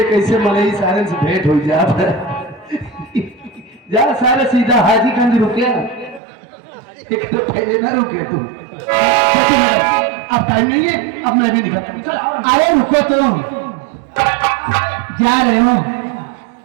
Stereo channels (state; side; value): drops out; left; at 6.2 s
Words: कैसे मलई सारे से भेंट हो जाता है। जा सारे सीधा हाजीगंज रुके ना, एक तो पहले ना रुके तू। अब टाइम नहीं है, अब मैं भी निकलता हूँ। अरे रुको तो, जा रहे हो,